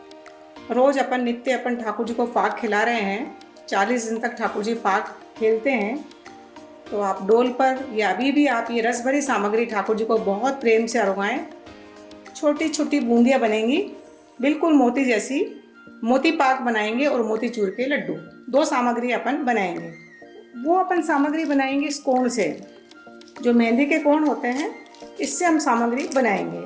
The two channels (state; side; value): identical; both; correlation 1.00